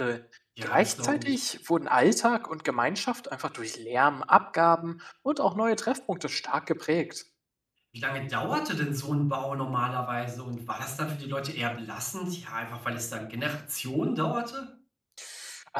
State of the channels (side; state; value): both; identical; correlation 1.00